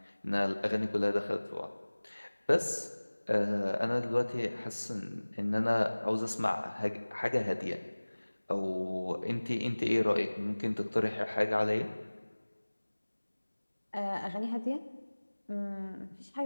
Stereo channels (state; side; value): inverted; both; correlation -1.00